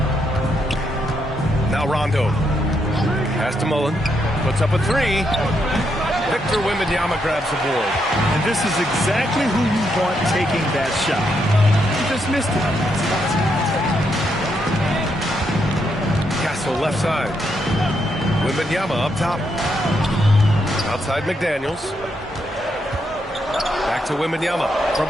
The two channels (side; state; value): both; normal; correlation 0.79